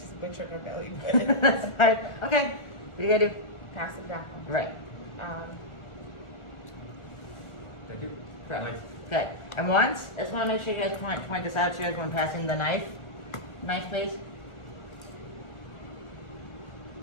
butchered her belly That's fine. Okay. What do you gotta do? Pass it back. Right. Thank you. Correct. Okay. And once, I just want to make sure you guys point this out to you guys when passing the knife. Knife, please.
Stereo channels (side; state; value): right; late; 1.4 ms